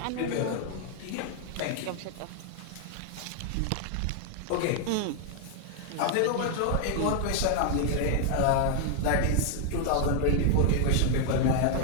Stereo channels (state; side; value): different; both; correlation 0.00